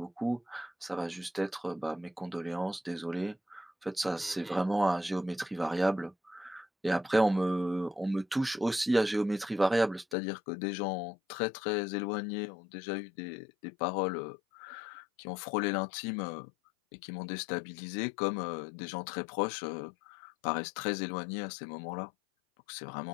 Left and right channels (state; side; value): drops out; right; at 10.2 s